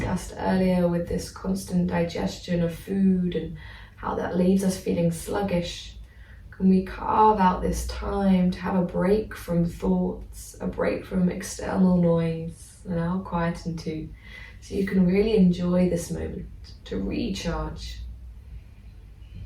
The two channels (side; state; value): both; identical; correlation 1.00